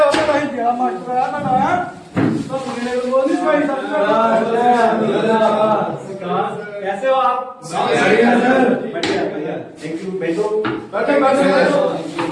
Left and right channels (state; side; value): identical; both; correlation 1.00